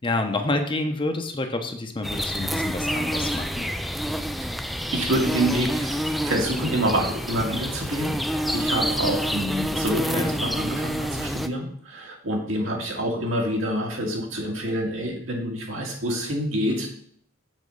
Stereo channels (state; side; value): normal; both; correlation 0.57